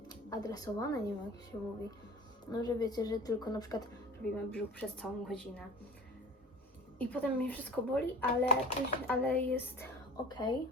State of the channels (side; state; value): both; normal; correlation 0.40